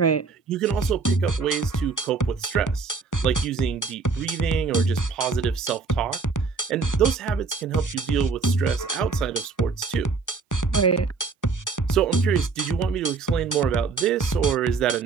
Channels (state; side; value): quieter; left; 4.6 dB